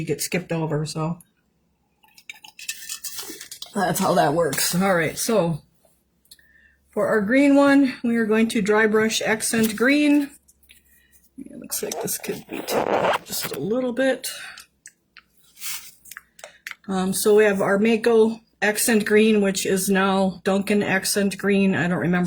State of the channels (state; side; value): identical; both; correlation 1.00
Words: get skipped over. So that's how that works. All right, so for our green one, we are going to dry brush accent green. It looks like this could be taken just a little bit. So we have our Mako accent green, which is now Duncan accent green. I don't